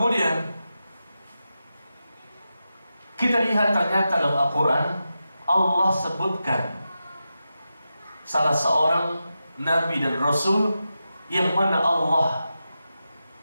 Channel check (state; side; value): inverted; both; correlation -0.90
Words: kita lihat ternyata dalam Al-Quran Allah sebutkan salah seorang Nabi dan Rasul yang mana Allah